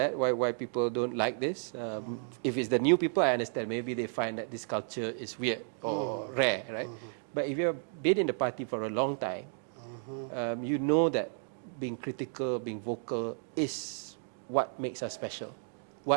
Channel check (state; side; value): silent; left; digital silence